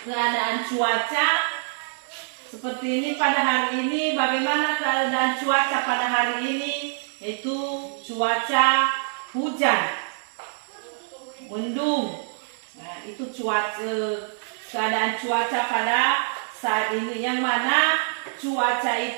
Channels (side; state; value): left; silent; 62 dB below the other